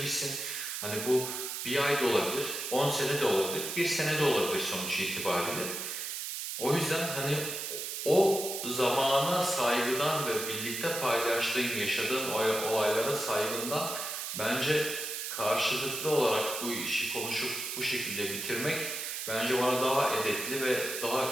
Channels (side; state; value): right; noise; hiss, 5 dB below the sound